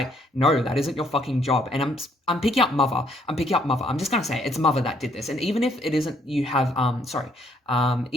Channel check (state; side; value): normal; both; correlation 0.67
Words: no, that isn't your fucking job. And I'm picking up mother. I'm just gonna say it's mother that did this. And even if it isn't, you have